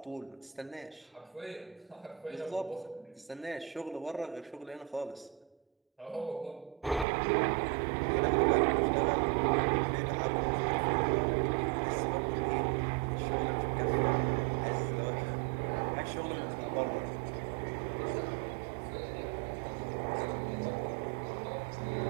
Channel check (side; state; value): left; drops out; at 7.1 s